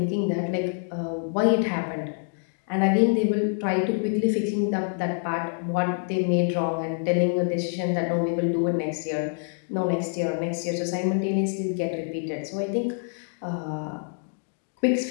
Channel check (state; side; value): silent; right; 61 dB below the other